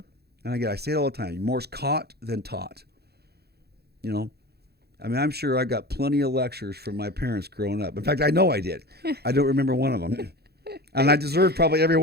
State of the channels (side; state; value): left; late; 0.47 ms